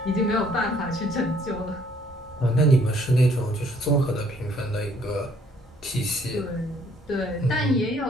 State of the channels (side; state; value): both; normal; correlation 0.63